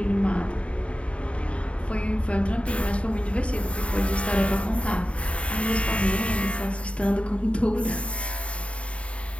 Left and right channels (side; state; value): right; late; 0.062 ms